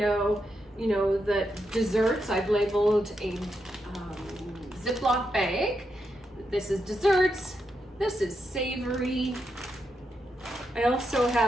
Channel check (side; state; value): both; normal; correlation 0.84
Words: you know, that desserts, I've labeled a Ziploc bag. This is desserts, this is savory. I also